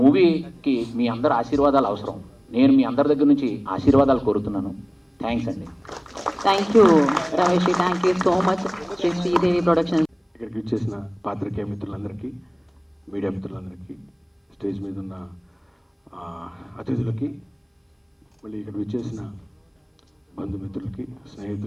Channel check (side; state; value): both; identical; correlation 1.00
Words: మీ అందరి ఆశీర్వాదాలు అవసరం. నేను మీ అందరి దగ్గర నుంచి ఆశీర్వాదాలు కోరుతున్నాను. థ్యాంక్స్ అండి. Thank you Ramesh, thank you so much Shri Sridevi productions. ఇక్కడికి వచ్చేసిన పాత్రికేయ మిత్రులందరికీ, మీడియా మిత్రులందరికీ, స్టేజ్ మీద ఉన్న అతిథులకి, మళ్ళీ ఇక్కడ వచ్చేసిన బంధుమిత్రులకి,